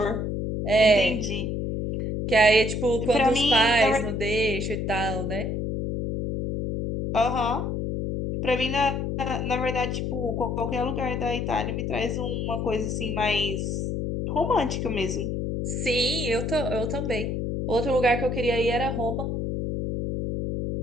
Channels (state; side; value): noise; left; hum, 2 dB below the sound